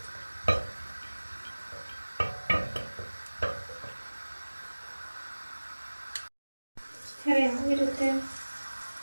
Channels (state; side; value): inverted; both; correlation -1.00